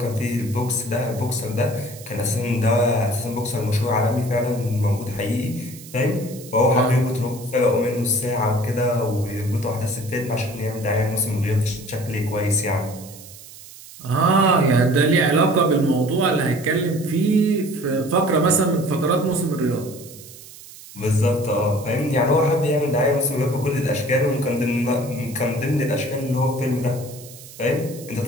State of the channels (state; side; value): noise; right; hiss, 18 dB below the sound